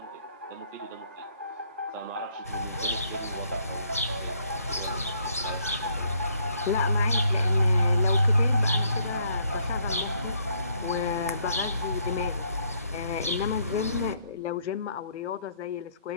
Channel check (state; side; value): inverted; both; correlation -0.68